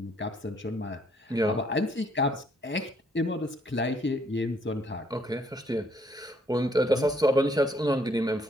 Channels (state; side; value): normal; both; correlation 0.67